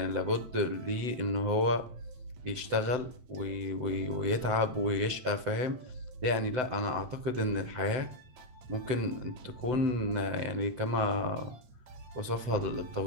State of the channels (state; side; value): late; left; 7.9 ms